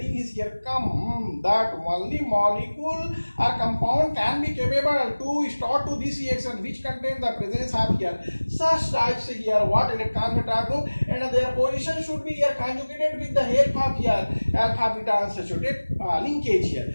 is here come that only molecule or compound can be capable to start to this reaction which contains the presence of here such types here what electron beta group, and their position should be here conjugated with the help of here alpha beta unsaturated linkage here.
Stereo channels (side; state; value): both; inverted; correlation -1.00